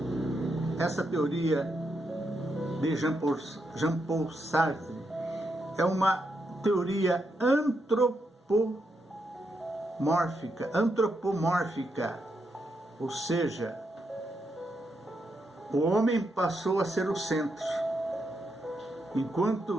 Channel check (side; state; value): both; normal; correlation 0.82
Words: essa teoria de Jean-Paul Sartre é uma teoria antropomórfica, ou seja, o homem passou a ser o centro,